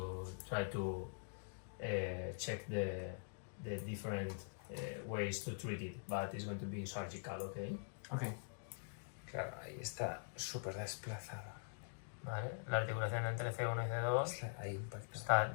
try to check the different ways to treat it, but it's going to be surgical, okay? Ok. Claro, ahí está súper desplazada. Vale, la articulación entre C1 y C2 Ahí impacta. está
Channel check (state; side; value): silent; right; digital silence